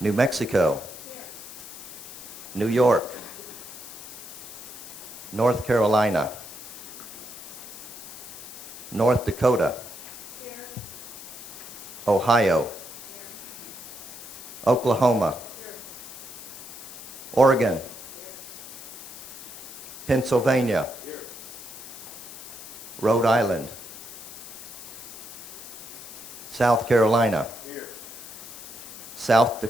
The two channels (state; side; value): noise; left; hiss, 13 dB below the sound